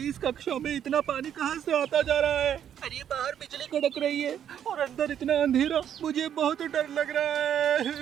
इस कक्षा में इतना पानी कहाँ से आता जा रहा है? अरे बाहर बिजली कड़क रही है और अंदर इतना अंधेरा, मुझे बहुत डर लग रहा है।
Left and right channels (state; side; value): quieter; left; 9.5 dB